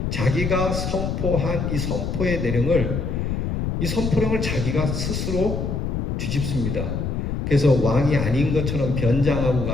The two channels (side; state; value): left; noise; rumble, 1 dB below the sound